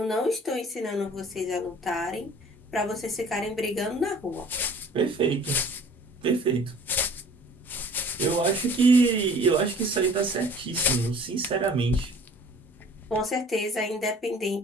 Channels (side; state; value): both; normal; correlation 0.50